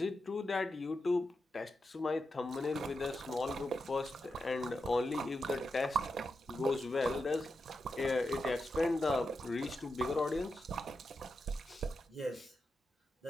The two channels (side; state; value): both; normal; correlation 0.87